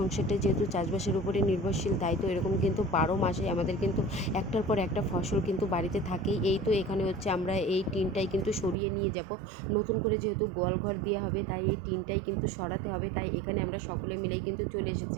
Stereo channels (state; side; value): drops out; left; at 8.8 s